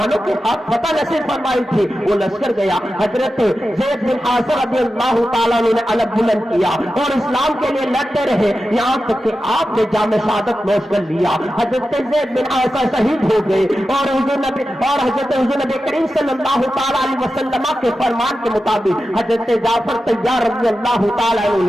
کے ہاتھ فتح نصیب فرمائی تھی۔ وہ لشکر گیا، حضرت زید بن حارثہ رضی اللہ تعالیٰ نے علم بلند کیا اور اسلام کے لیے لڑتے رہے، یہاں تک کہ آپ نے جام شہادت نوش کر لیا۔ حضرت زید بن حارثہ شہید ہو گئے اور حضرت حضور نبی کریم صلی اللہ تعالیٰ علیہ وسلم کے فرمان کے مطابق حضرت جعفر طیار رضی اللہ تعالیٰ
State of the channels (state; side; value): normal; both; correlation 0.92